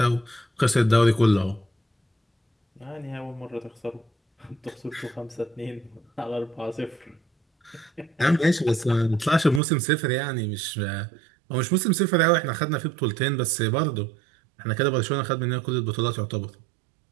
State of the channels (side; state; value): left; drops out; at 9.6 s